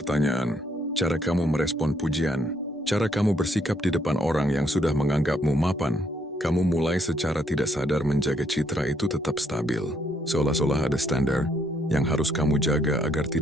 cara kamu merespon pujian, cara kamu bersikap di depan orang yang sudah menganggapmu mapan. Kamu mulai secara tidak sadar menjaga citra itu tetap stabil. Seolah-olah ada standar yang harus kamu jaga agar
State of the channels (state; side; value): normal; both; correlation 0.71